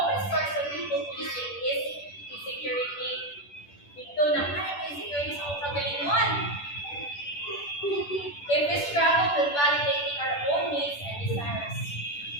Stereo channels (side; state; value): right; late; 10 ms